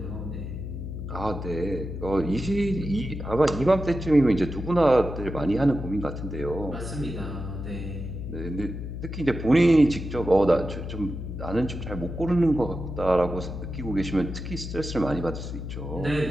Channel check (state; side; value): noise; left; hum, 7 dB below the sound